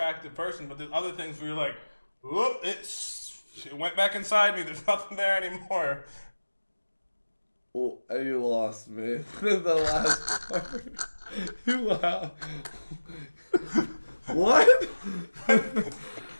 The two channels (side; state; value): both; inverted; correlation -1.00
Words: person, but there's other things where you're like, whoop, it went back inside me. There's nothing there anymore. Well, you lost me. The last part. Wow. What?